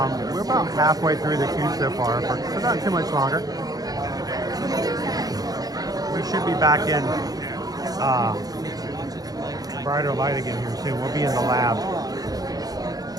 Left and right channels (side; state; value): left; late; 0.18 ms